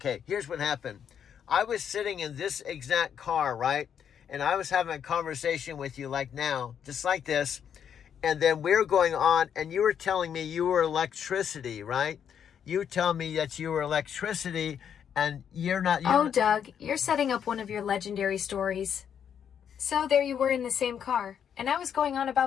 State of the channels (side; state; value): right; quieter; 8.3 dB